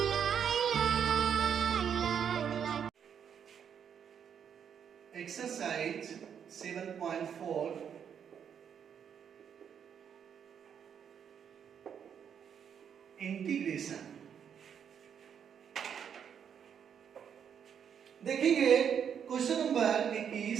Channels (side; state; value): left; quieter; 8.0 dB